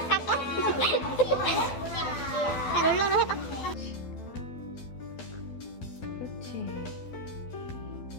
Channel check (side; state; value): right; late; 12 ms